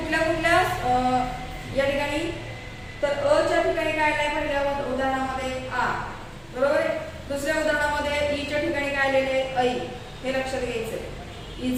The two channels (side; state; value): both; identical; correlation 1.00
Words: या ठिकाणी तर अ च्या ठिकाणी काय आलंय? पहिल्या उदाहरणामध्ये आ बरोबर आहे. दुसऱ्या उदाहरणामध्ये ई च्या ठिकाणी काय राहिलेले ऐ हे लक्षात घ्यायचंय.